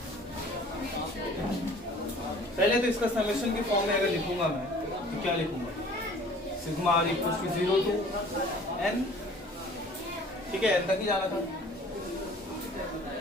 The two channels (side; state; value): both; normal; correlation 0.50